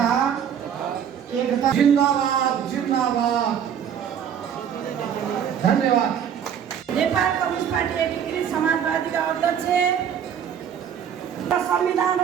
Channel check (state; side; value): quieter; left; 8.5 dB